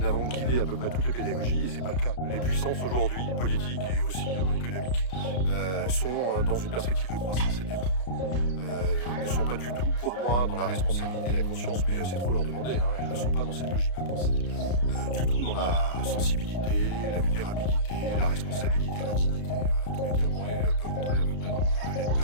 guider à peu près toutes les pédagogies, et c'est pas le cas. Les puissances aujourd'hui, politiques et aussi économiques, sont dans une perspective de croissance et de développement. Ne sont pas du tout, pour moi, dans la responsabilité et la conscience, mais c'est trop leur demander, hein, elles ne sont pas dans cette logique de pensée. Du tout dans la sensibilité, la vulnérabilité, la responsabilité, la dignité. Tous les termes peuvent rentrer à peu près dans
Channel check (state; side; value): late; right; 33 ms